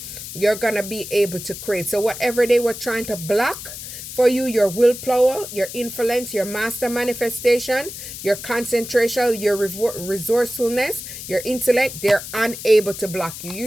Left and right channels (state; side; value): noise; left; hiss, 10 dB below the sound